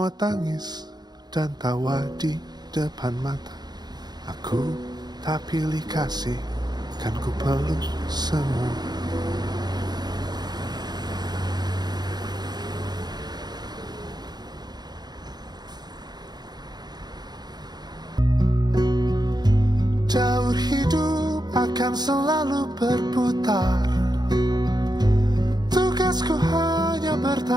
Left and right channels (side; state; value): left; late; 0.20 ms